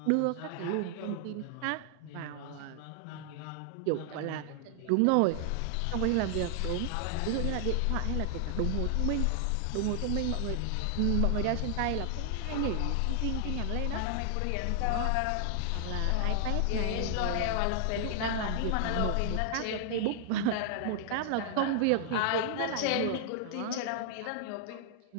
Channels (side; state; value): both; different; correlation -0.01